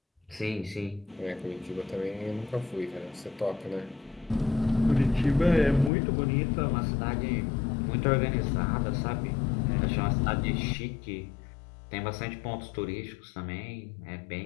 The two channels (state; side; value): drops out; right; at 5.9 s